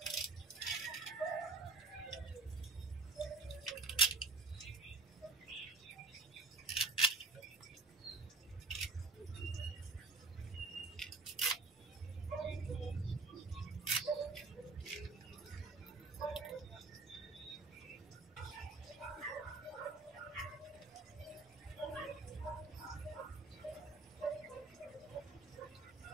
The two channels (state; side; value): quieter; left; 3.8 dB